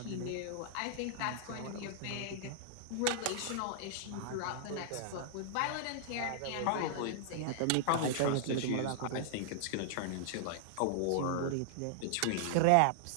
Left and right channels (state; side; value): different; both; correlation -0.01